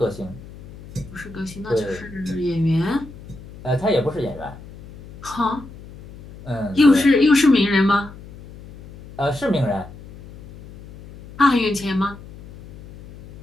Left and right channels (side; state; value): left; noise; hum, 18 dB below the sound